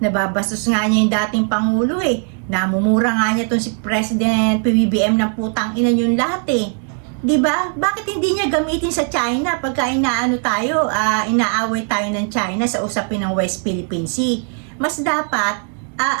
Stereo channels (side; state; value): left; quieter; 39.7 dB